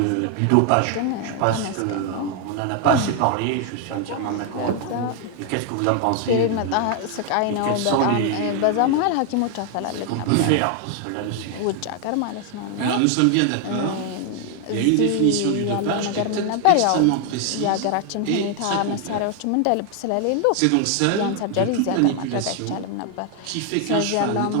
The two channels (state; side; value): different; both; correlation 0.00